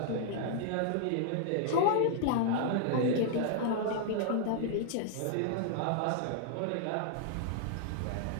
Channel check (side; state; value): both; different; correlation -0.01